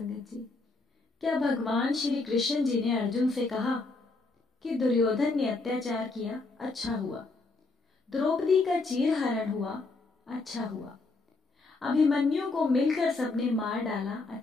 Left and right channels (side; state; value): right; quieter; 3.5 dB